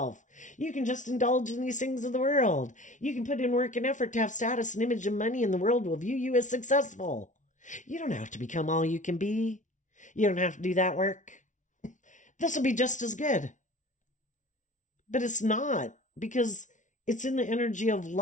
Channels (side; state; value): right; late; 0.37 ms